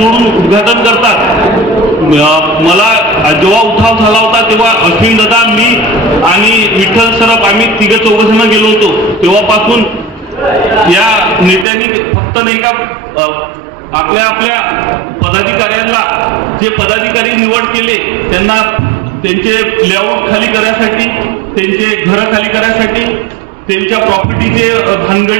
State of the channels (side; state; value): left; drops out; at 11.7 s